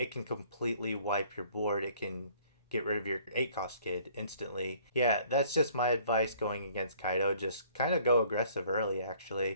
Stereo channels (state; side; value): inverted; both; correlation -0.58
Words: can completely wipe your board. It can get rid of your 8 cost kid instantly. Yeah, that's just my advice going against Kaido. Just kind of go aggressive early,